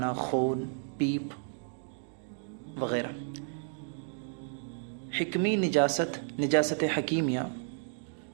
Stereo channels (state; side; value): silent; left; digital silence